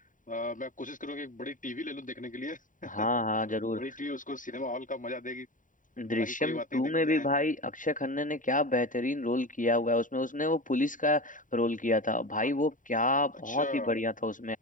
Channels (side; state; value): right; late; 0.38 ms